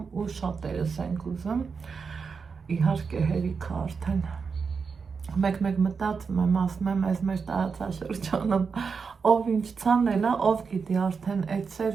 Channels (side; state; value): left; quieter; 5.4 dB